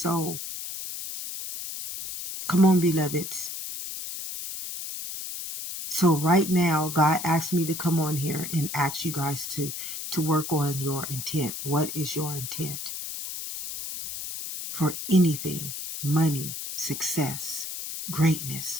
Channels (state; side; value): noise; left; hiss, 7 dB below the sound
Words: Come on, beloveds. So right now, God asked me to come on here and ask you guys to work on your intent. What is your intent? For anything, money, success,